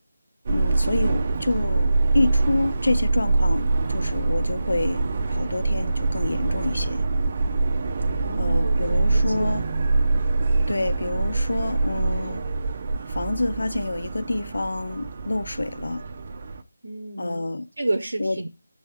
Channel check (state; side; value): inverted; both; correlation -0.92